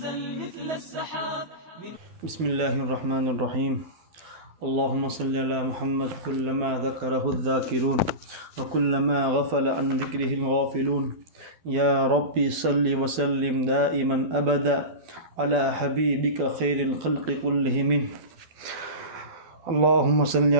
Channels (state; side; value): late; left; 12 ms